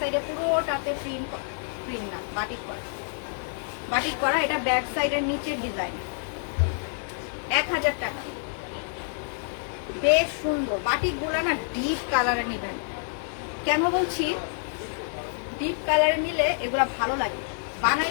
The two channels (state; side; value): silent; right; 60 dB below the other